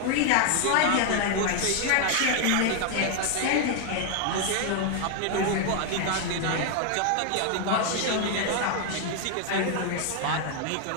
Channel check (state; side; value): different; both; correlation 0.00